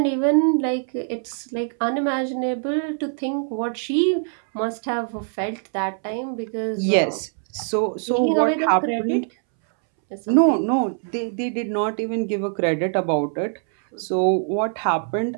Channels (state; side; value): silent; left; 63 dB below the other